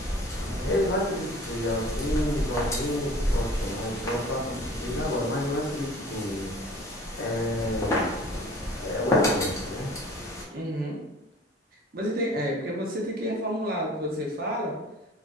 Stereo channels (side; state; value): both; normal; correlation 0.46